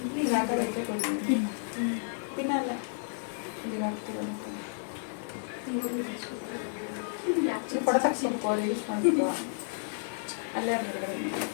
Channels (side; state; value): right; silent; digital silence